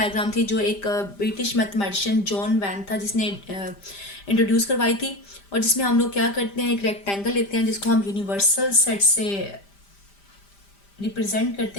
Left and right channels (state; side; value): late; right; 5.0 ms